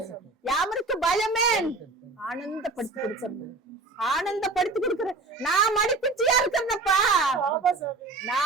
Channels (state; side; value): quieter; left; 3.5 dB